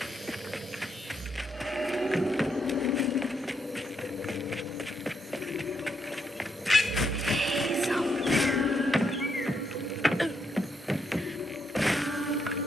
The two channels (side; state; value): both; normal; correlation 0.78